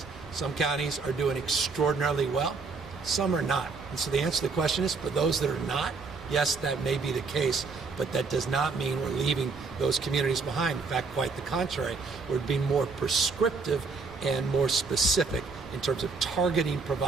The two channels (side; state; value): left; quieter; 4.5 dB